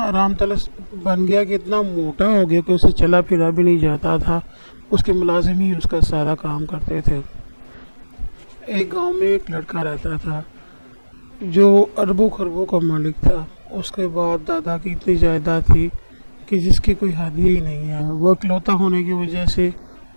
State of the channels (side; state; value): both; inverted; correlation -1.00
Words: آرام طلس بن گیا کہ اتنا موٹا ہو گیا کہ اسے چلا پھرا بھی نہیں جاتا تھا. اس کے ملازم ہی اس کا سارا کام کرتے تھے. ایک گاؤں میں ایک لڑکا رہتا تھا جو اربوں خربوں کا مالک تھا. اس کے باپ دادا کی اتنی جائیداد تھی کہ جس کی کوئی حد ہی نہیں ہے. وہ اکلوتا ہونے کی وجہ سے